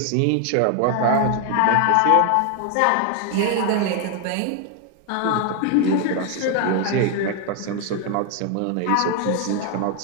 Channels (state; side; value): different; both; correlation 0.01